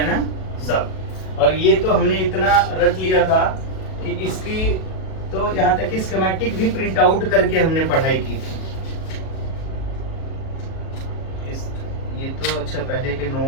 ना सब। और ये तो हमने इतना रट लिया था कि इसकी तो यहाँ तक कि स्कीमेटिक भी प्रिंट आउट करके हमने पढ़ाई की थी। ये तो अच्छा पहले के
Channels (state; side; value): late; right; 37 ms